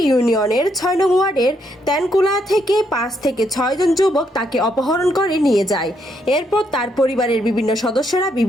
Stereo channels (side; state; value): both; normal; correlation 0.75